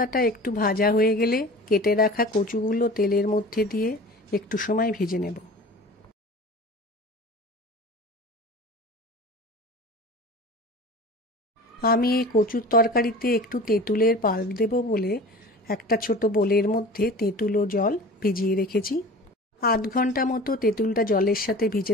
একটু ভাজা হয়ে গেলে কেটে রাখা কচুগুলো তেলের মধ্যে দিয়ে একটু সময় ভেজে নেব। আমি এই কচুর তরকারিতে একটু তেঁতুলের পাল্প দেব বলে একটা ছোট বোলের মধ্যে তেঁতুল ও জল ভিজিয়ে রেখেছি। আধ ঘন্টা মতো তেঁতুলটা জলের সাথে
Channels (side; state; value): both; normal; correlation 0.38